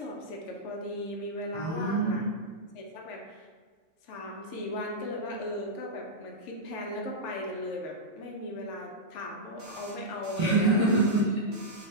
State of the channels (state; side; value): normal; both; correlation -0.09